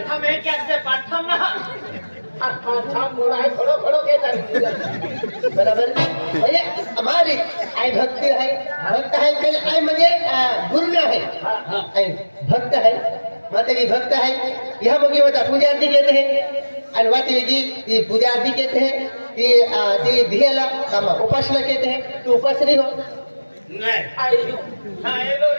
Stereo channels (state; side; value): inverted; both; correlation -1.00